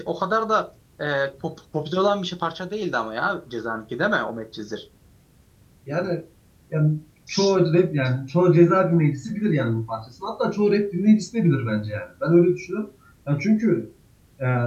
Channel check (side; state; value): both; identical; correlation 1.00